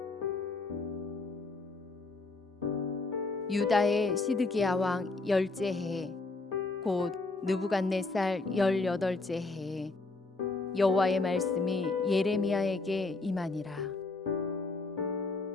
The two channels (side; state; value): right; quieter; 3.5 dB